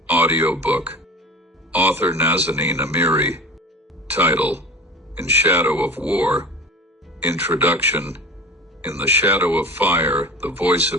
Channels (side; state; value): both; normal; correlation 0.36